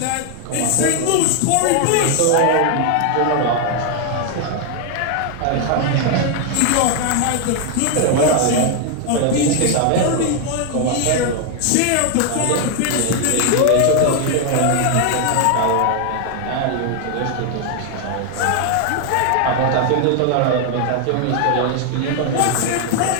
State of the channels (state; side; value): different; both; correlation 0.00